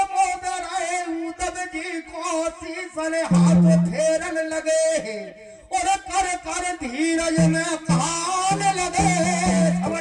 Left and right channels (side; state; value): both; identical; correlation 1.00